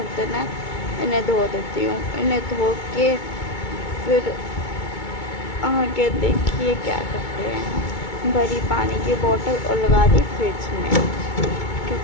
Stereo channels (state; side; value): late; right; 2.2 ms